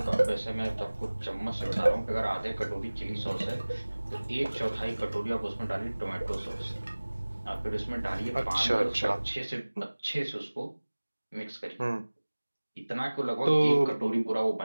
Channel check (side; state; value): both; inverted; correlation -1.00